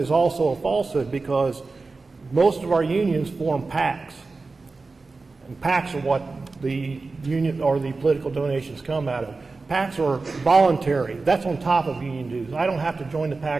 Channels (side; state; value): left; quieter; 3.9 dB